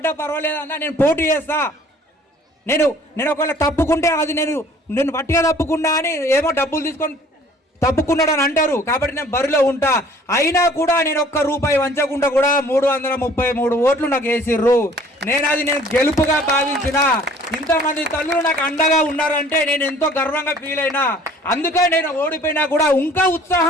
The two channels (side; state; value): both; normal; correlation 0.53